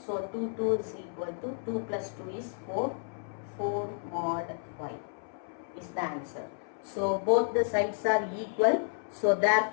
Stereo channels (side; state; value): right; silent; 57 dB below the other